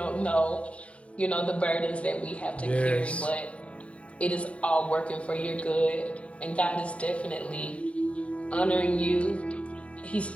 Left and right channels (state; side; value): late; right; 0.063 ms